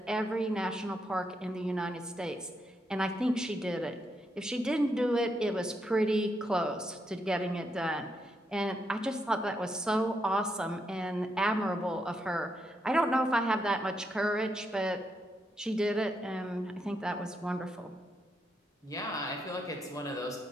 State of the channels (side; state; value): both; normal; correlation 0.80